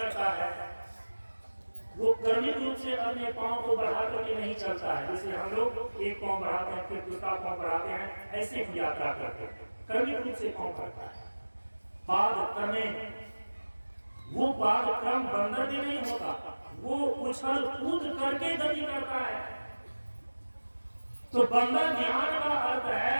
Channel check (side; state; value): both; inverted; correlation -1.00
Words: है? वो क्रमिक रूप से अपने पांव को बढ़ा करके नहीं चलता है। जैसे हम लोग एक पांव बढ़ाते हैं फिर दूसरा पांव बढ़ाते हैं, ऐसे ही यात्रा करते हैं। क्रमिक रूप से पांव बढ़ता है। पाद क्रमेण, वो पाद क्रम बंदर में नहीं होता, वो उछल कूद करके गति करता है। तो बंदर ध्यान का अर्थ